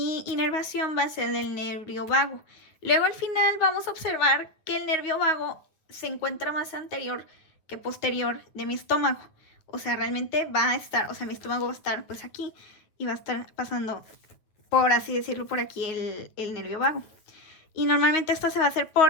inervación va a ser del nervio vago. Luego al final vamos a observar que el nervio vago se encuentra más anterior que posterior de mi estómago. O sea, realmente va a estar, o sea, mi estómago va a estar pues aquí y va a estar pasando, por así decirlo, por aquí el nervio vago. Y normalmente esto se va a hacer por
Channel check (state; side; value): late; right; 9.2 ms